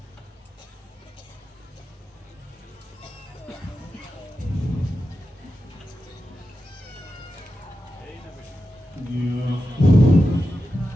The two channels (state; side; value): normal; both; correlation 0.90